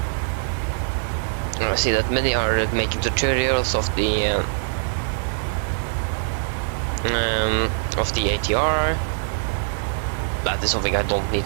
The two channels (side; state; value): left; silent; 63 dB below the other